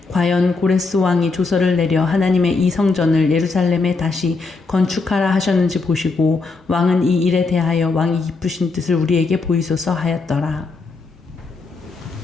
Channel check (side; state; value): right; quieter; 4.0 dB